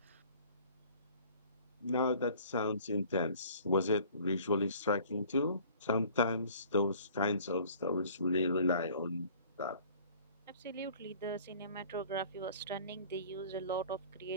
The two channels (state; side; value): inverted; both; correlation -0.51